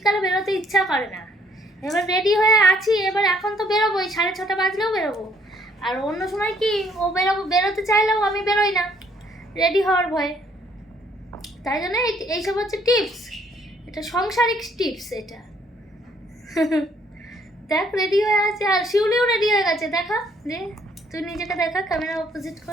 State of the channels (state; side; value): normal; both; correlation 0.65